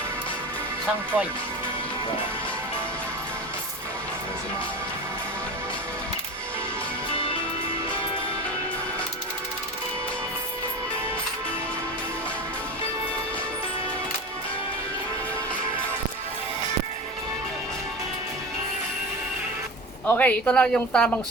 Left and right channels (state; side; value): normal; both; correlation 0.30